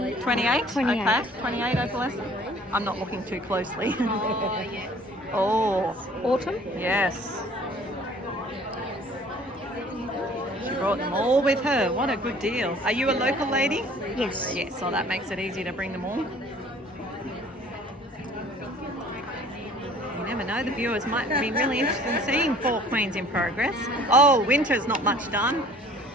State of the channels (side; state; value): both; normal; correlation 0.52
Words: 28. Okay, 28 opalescent. I'm not looking too closely. Oh, yes. Oh. Autumn? Yes. She brought them all with her. What a good deal. Are you a local lady? Yes. Yes, so that makes it easy to bring them all. You never know, the viewers might be really interested in seeing 4 queens in progress. Oh, winter's not much done.